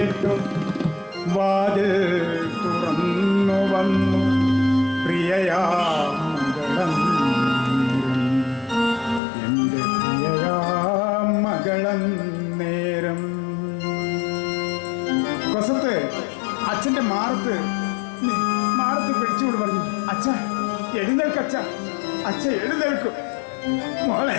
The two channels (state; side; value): drops out; right; at 9.2 s